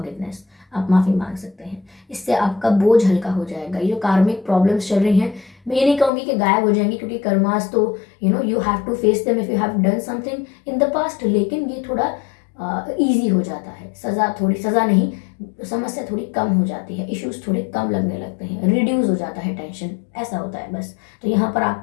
आप माफ़ी मांग सकते हैं, इससे आपका बोझ हल्का हो जाएगा। ये जो कार्मिक प्रॉब्लम्स चल रही हैं, मैं ये नहीं कहूँगी कि गायब हो जाएंगी, क्योंकि कर्मास तो you have to face them if you have done something in the past, लेकिन ये थोड़ा ईजी हो जाता है। सज़ा नहीं, समस्या थोड़ी कम हो जाती है, इश्यूज थोड़े कम लगने लगते हैं, रिड्यूस हो जाता है टेंशन, ऐसा होता है बस। तो यहाँ पर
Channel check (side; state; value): right; drops out; at 6.1 s